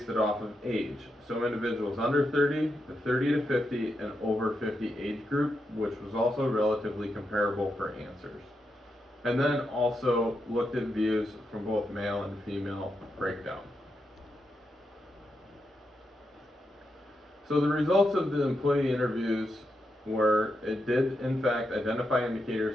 it off of age. So individuals under 30, the 30 to 50, and over 50 age group, which was also relatively comparable for answers. And then also looked at views from both male and female breakdown. So the results of the employee interviews were, it did in fact identify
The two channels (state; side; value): normal; both; correlation 0.85